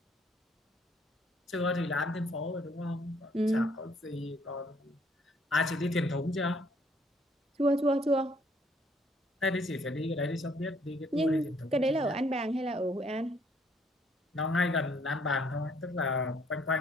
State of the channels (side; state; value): both; normal; correlation 0.65